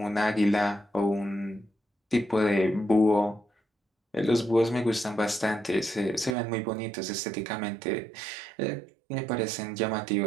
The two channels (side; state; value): left; drops out; at 6.4 s